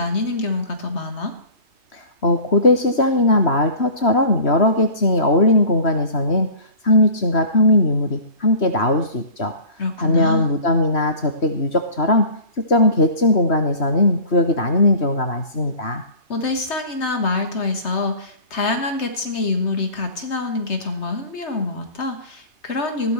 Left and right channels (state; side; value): late; right; 3.2 ms